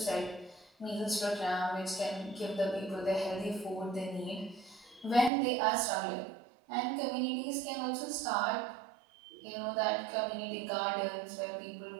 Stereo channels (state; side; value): drops out; left; at 5.3 s